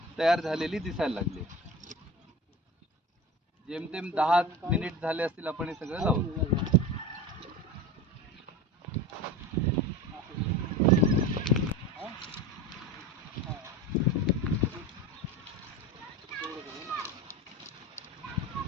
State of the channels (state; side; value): normal; both; correlation 0.30